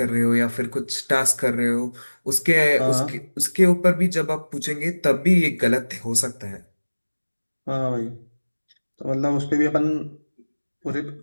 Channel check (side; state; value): both; inverted; correlation -1.00